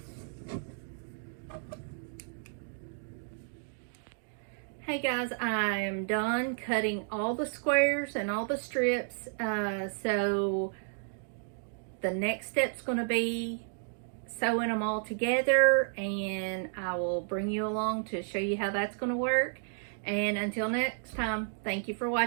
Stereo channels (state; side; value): silent; left; digital silence